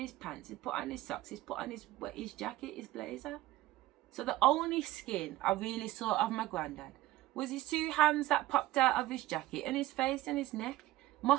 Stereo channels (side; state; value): left; quieter; 16.5 dB